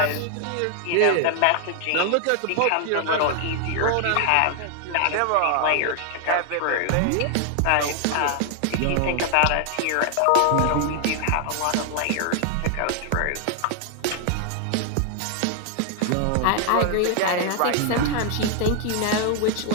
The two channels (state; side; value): different; both; correlation 0.00